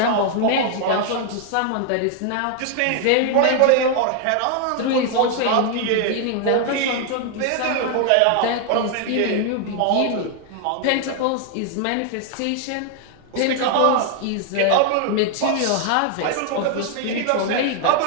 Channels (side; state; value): both; different; correlation 0.00